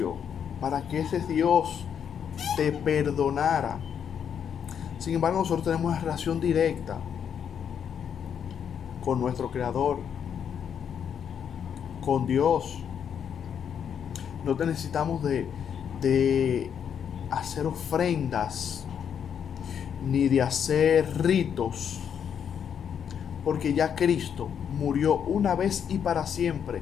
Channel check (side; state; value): right; quieter; 8.0 dB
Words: para que ese Dios te perdonara. Sin embargo, nosotros tenemos una relación directa con nuestro Creador, con Dios. No necesitamos de hacer ofrendas ni de hacer ritos, porque ya Cristo murió una vez y para siempre.